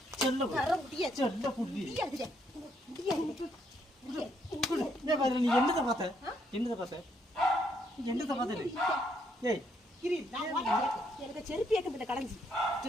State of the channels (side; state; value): both; normal; correlation 0.72